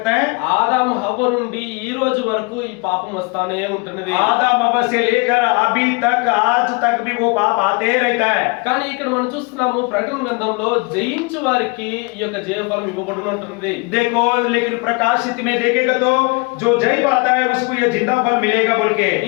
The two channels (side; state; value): right; quieter; 29.1 dB